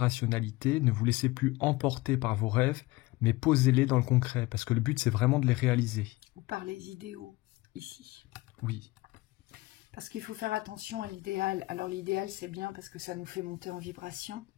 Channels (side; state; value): right; quieter; 20.7 dB